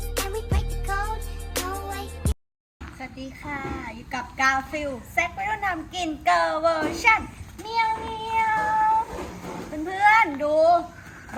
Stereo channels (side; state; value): both; identical; correlation 1.00